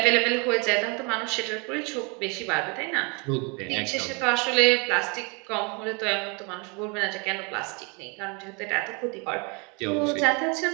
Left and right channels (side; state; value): left; quieter; 31.7 dB